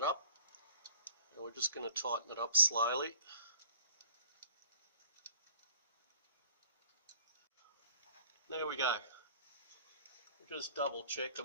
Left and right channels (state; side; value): inverted; both; correlation -0.54